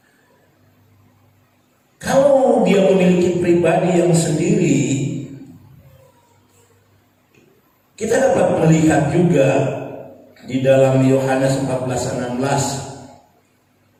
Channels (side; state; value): both; identical; correlation 1.00